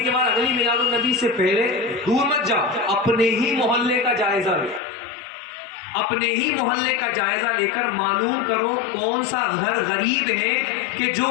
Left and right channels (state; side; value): drops out; right; at 4.8 s